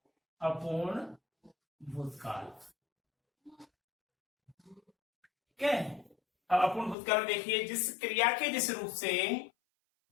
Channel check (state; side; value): drops out; right; at 7.0 s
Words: अपूर्ण भूतकाल, ठीक है। अब अपूर्ण भूतकाल में देखिए, जिस क्रिया के जिस रूप से